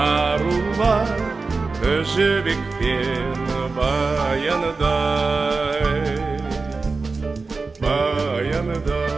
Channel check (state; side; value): quieter; left; 4.0 dB